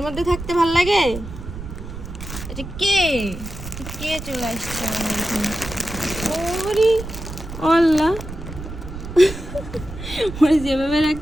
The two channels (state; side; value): noise; right; rumble, 10 dB below the sound